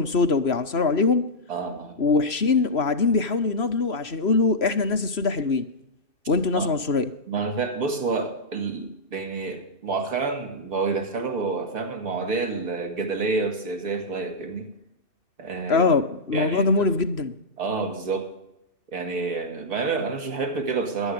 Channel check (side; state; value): right; late; 3.0 ms